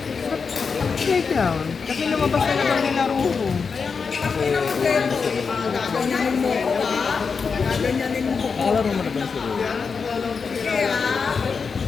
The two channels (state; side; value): quieter; right; 5.4 dB